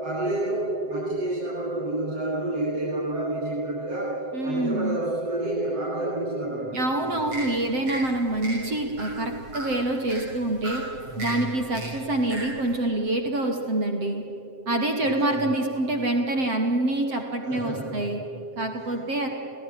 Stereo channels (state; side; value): late; left; 7.7 ms